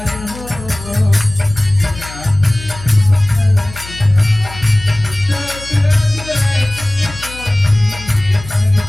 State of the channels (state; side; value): noise; left; hum, 15 dB below the sound